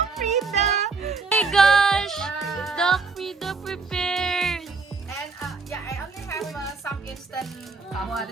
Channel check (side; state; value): left; quieter; 4.4 dB